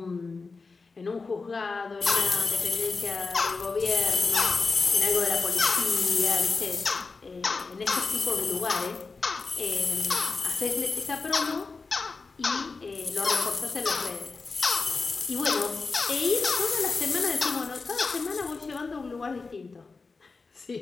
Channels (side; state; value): right; quieter; 4.2 dB